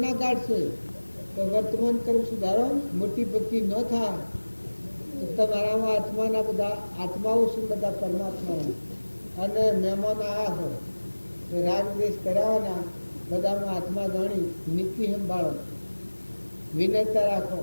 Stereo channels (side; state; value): both; inverted; correlation -1.00